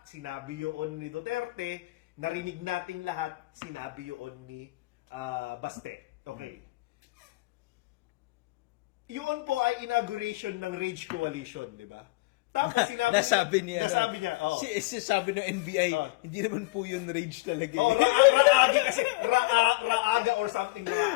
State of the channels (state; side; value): quieter; right; 22.2 dB